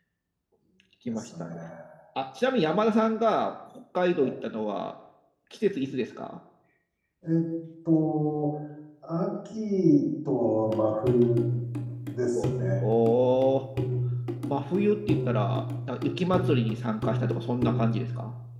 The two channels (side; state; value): both; identical; correlation 1.00